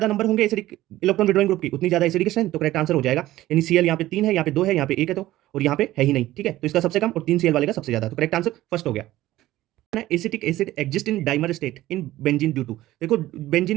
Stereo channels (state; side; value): quieter; left; 15.7 dB